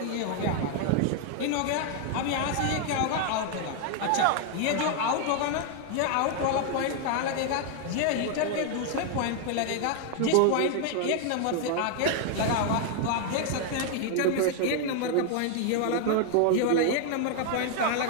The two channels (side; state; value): both; different; correlation 0.00